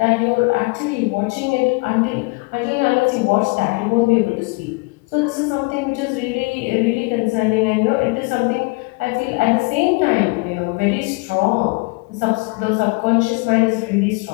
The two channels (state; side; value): quieter; right; 27.8 dB